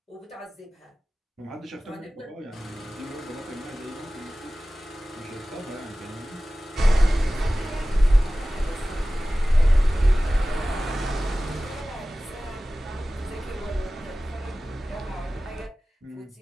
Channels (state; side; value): normal; both; correlation 0.97